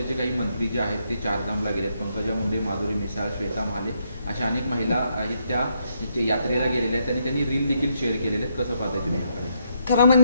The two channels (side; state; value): both; inverted; correlation -0.76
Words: काही मंत्री जे आहेत ते चारधामला गेलेत. पंकजा मुंडे, माधुरी मिसाळ, श्वेता महाले अशा अनेक महिला आहेत त्या यात्रेला गेलेल्या आहेत आणि त्यांनी रील देखील शेअर केलेले आहेत. कसं पाहताय तुम्ही याकडे? खरं